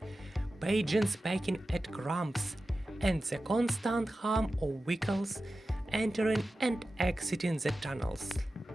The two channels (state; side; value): normal; both; correlation 0.94